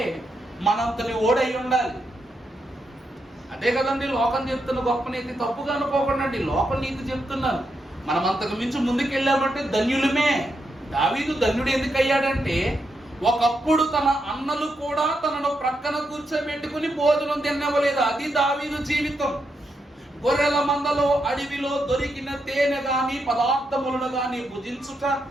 మనంతని ఓడై ఉండాలి. అదే కదండి లోకం చెప్తున్న గొప్ప నీతి. తప్పుగా అనుకోకండి, లోక నీతి చెప్తున్నాను. మనం అంతకు మించి ముందుకెళ్ళామంటే ధన్యులమే. దావీదు ధన్యుడు ఎందుకు అయ్యాడంటే, ఒకప్పుడు తన అన్నలు కూడా తనను ప్రక్కన కూర్చోబెట్టుకుని భోజనం తినవలేదు. అది దావీదు జీవితం. గొర్రెల మందలో అడవిలో దొరికిన తేనె గాని పదార్థములను గాని భుజించుట,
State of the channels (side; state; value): both; normal; correlation 0.83